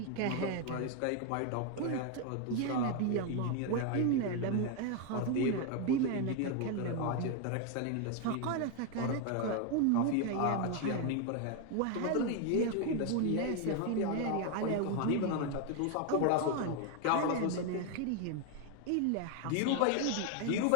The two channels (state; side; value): different; both; correlation 0.01